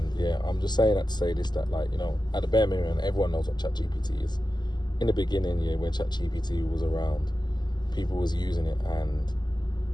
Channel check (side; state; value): right; late; 0.21 ms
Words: I'm just saying that to say this, that at the bare minimum, everyone knows what ChatGPT is. In the beginning, when ChatGPT was around, people was using it, and